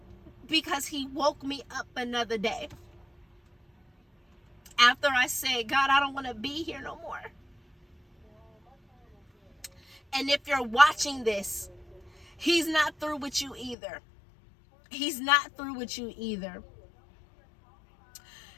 because he woke me up another day. After I said, God, I don't want to be here no more. And if you're watching this, he's not through with you either. He's not through with you either.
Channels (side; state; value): right; drops out; at 13.8 s